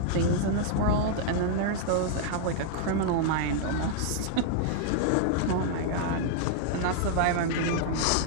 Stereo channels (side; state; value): both; different; correlation 0.00